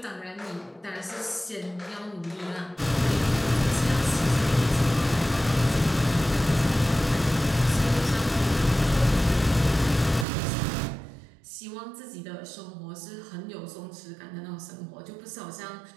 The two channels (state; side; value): drops out; left; at 10.2 s